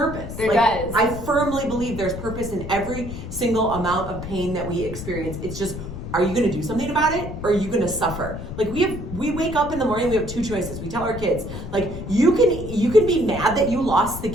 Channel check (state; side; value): noise; left; rumble, 8 dB below the sound